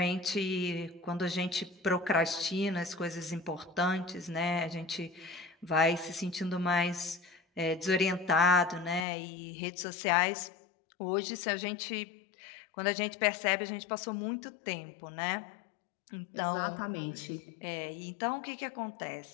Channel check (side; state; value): right; drops out; at 9.1 s